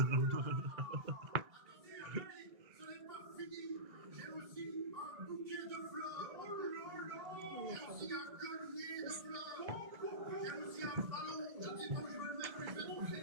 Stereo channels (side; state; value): left; late; 1.8 ms